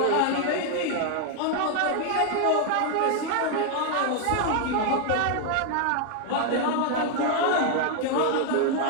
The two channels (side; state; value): both; different; correlation 0.00